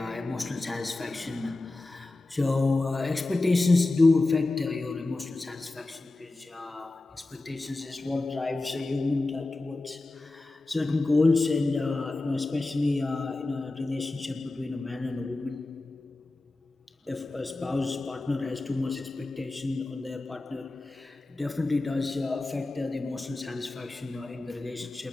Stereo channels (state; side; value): quieter; right; 3.0 dB